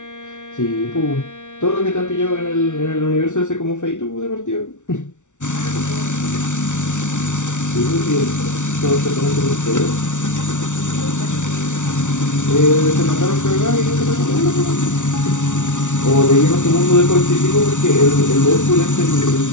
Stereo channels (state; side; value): late; right; 0.86 ms